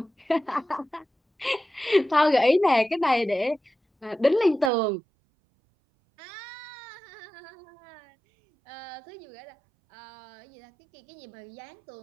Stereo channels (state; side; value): drops out; left; at 4.7 s